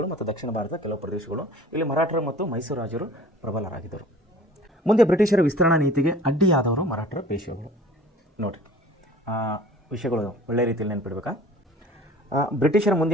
ಮತ್ತು ದಕ್ಷಿಣ ಭಾರತದ ಕೆಲವು ಪ್ರದೇಶಗಳು. ಇಲ್ಲಿ ಮರಾಠರು ಮತ್ತು ಮೈಸೂರು ರಾಜರು ಪ್ರಬಲರಾಗಿದ್ದರು. ಮುಂದೆ ಬ್ರಿಟಿಷರ ವಿಸ್ತರಣಾ ನೀತಿಗೆ ಅಡ್ಡಿಯಾದವರು ಮರಾಠರ ಪೇಶ್ವೆಗಳು. ನೋಡಿರಿ, ವಿಷಯಗಳು ಒಳ್ಳೆಯ ರೀತಿಯಲ್ಲಿ ನೆನಪಿಡ್ಬೇಕಾ. ಬ್ರಿಟಿಷರ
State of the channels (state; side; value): normal; both; correlation 0.46